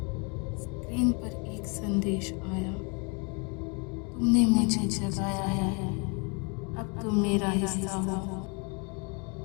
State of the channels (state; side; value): quieter; right; 33.7 dB